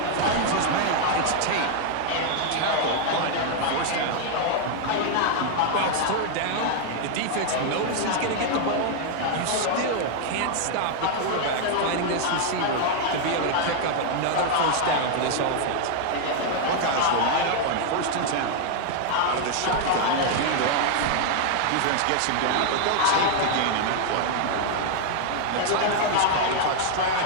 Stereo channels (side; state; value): both; different; correlation 0.00